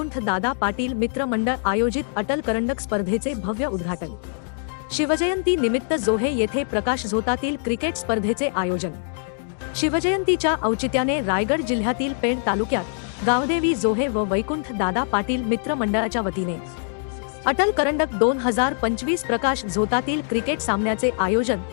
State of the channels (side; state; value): right; silent; 60 dB below the other